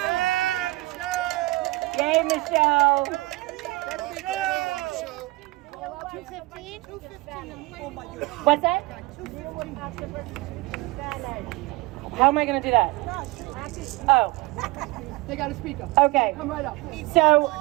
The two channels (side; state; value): left; quieter; 21.5 dB